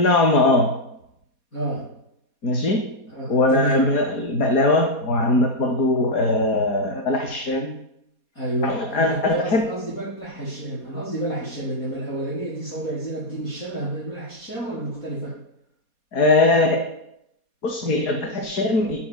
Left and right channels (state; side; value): late; right; 4.2 ms